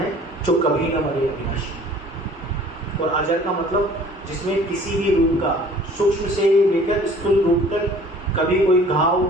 जो कभी न मरे, अविनाशी। और अजर का मतलब जिसमें किसी भी रूप का, सूक्ष्म से लेकर स्थूल रूप तक कभी कोई घाव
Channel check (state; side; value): normal; both; correlation 0.51